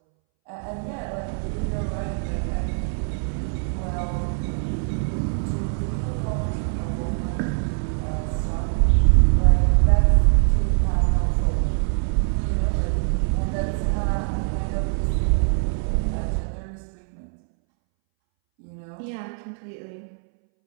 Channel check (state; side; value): silent; left; 63 dB below the other